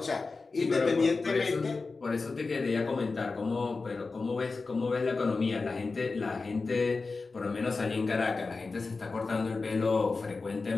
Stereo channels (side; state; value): right; quieter; 4.0 dB